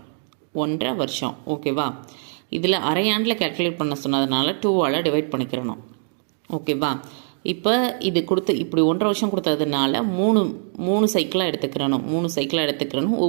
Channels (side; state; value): left; silent; 64 dB below the other